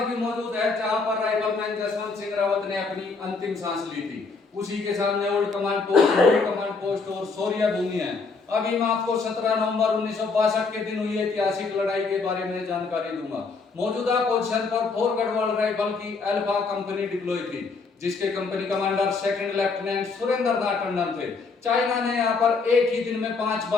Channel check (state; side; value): quieter; right; 4.4 dB